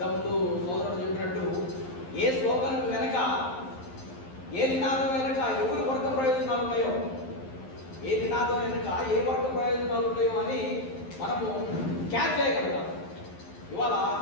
సోదరుడు చెప్పినట్టు ఏ స్లోగన్ వెనక, ఏ నినాదం వెనక ఎవరి వర్గ ప్రయోజనాలు ఉన్నాయో, ఏ నినాదం వెనుక ఏ వర్గ ప్రయోజనాలు ఉన్నాయో అని మనము క్యాచ్ చేయగలగాలి. ఇవాళ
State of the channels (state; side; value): late; right; 11 ms